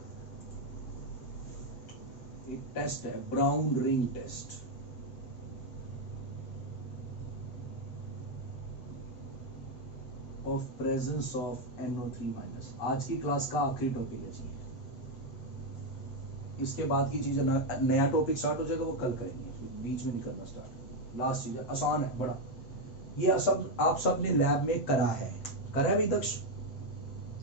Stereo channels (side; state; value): right; late; 7.9 ms